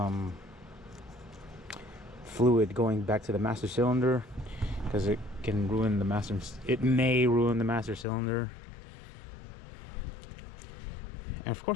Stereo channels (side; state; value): right; drops out; at 8.1 s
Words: fluid going back to the master cylinder, because it can ruin the master. It may ruin the master cylinder. And of